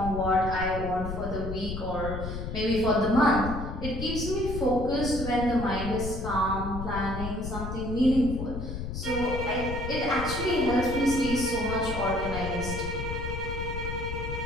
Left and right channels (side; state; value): left; noise; rumble, 6 dB below the sound